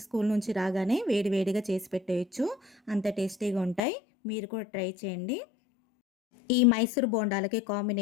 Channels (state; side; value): drops out; right; at 3.8 s